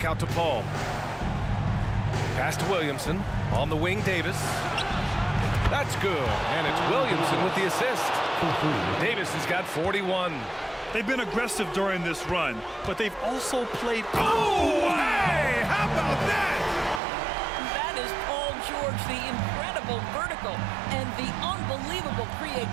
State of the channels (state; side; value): drops out; left; at 17.0 s